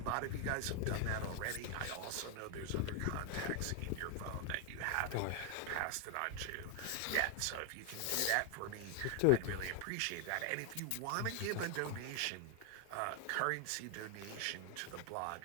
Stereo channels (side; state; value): both; different; correlation 0.00